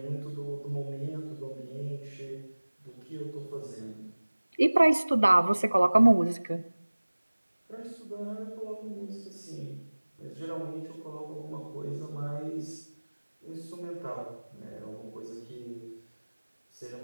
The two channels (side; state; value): both; inverted; correlation -1.00